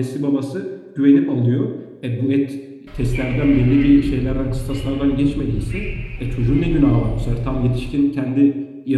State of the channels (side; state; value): both; identical; correlation 1.00